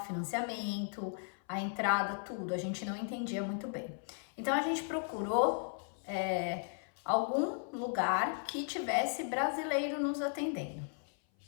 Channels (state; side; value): silent; right; 54 dB below the other